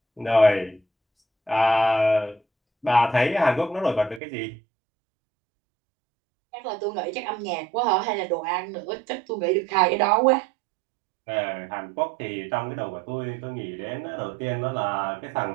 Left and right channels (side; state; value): left; drops out; at 4.2 s